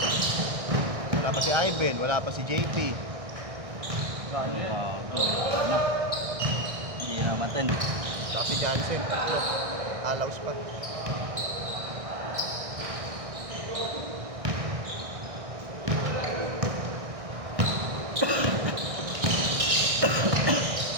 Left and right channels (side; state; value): left; late; 1.6 ms